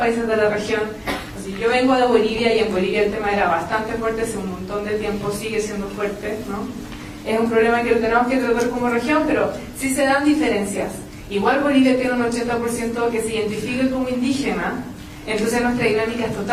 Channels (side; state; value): both; identical; correlation 1.00